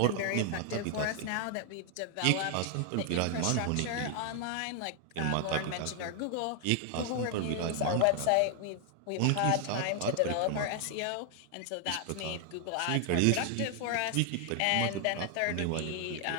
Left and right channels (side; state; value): both; different; correlation 0.00